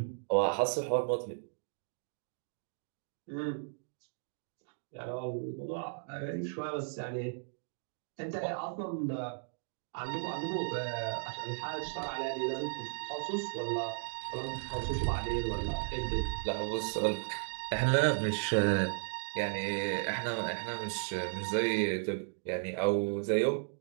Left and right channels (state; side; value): silent; left; digital silence